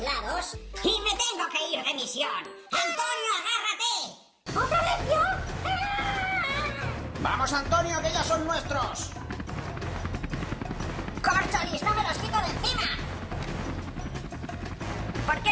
lados y me tengo que ir de misión. ¡Antonio, agárrate! ¿Otra vez yo? ¡Ah! ¡Vamos, Antonio, que ya son nuestros! ¡Córcholis, no me los quito de encima! ¿por qué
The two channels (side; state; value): both; identical; correlation 1.00